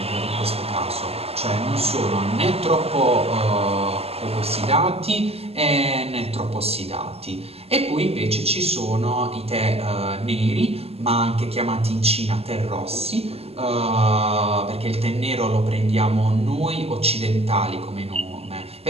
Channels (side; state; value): left; late; 0.29 ms